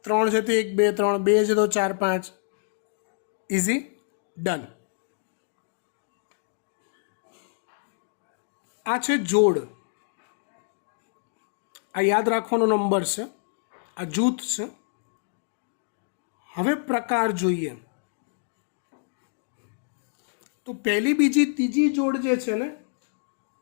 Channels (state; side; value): silent; right; digital silence